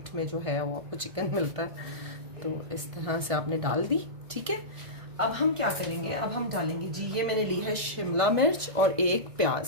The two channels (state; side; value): late; left; 1.6 ms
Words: में जो है वो आपको चिकन मिलता है। तो इस तरह से आपने डाल दी, ठीक है। अब हम क्या करेंगे, अब हम डालेंगे जी, ये मैंने ली है शिमला मिर्च और एक